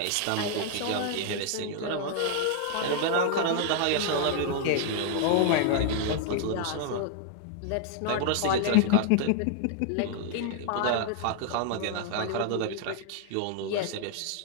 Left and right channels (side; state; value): both; different; correlation 0.00